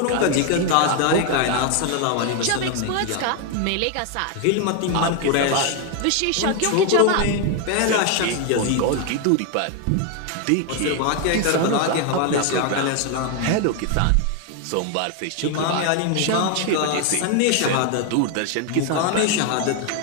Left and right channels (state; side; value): different; both; correlation 0.01